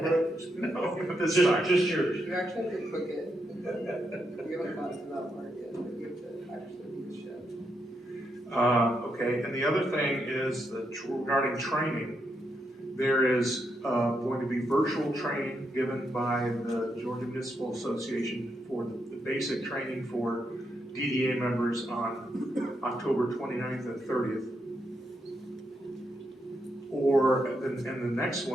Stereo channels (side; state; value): both; normal; correlation 0.81